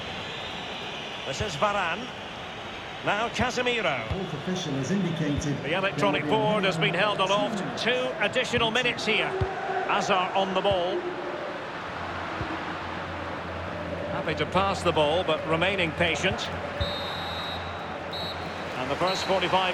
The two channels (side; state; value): both; identical; correlation 1.00